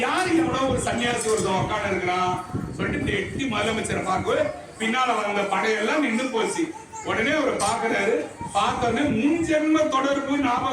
யாரு? எவ்வளவு ஒரு சன்னியாசி ஒருத்தன் உட்காந்து இருக்கிறான் சொல்லிட்டு எட்டி முதலமைச்சரை பார்க்க பின்னால வந்த படையெல்லாம் நின்று போச்சு. உடனே அவர் பாக்குறாரு. பார்த்தோன்னே முன்ஜென்ம தொடர்பு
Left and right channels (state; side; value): identical; both; correlation 1.00